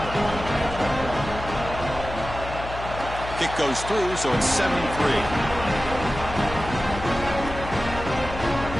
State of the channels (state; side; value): noise; left; hum, 10 dB below the sound